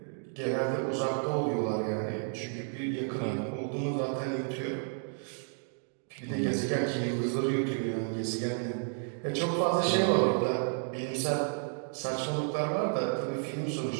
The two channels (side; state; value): left; silent; 57 dB below the other